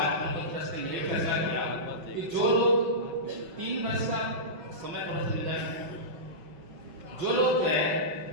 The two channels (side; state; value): left; late; 5.8 ms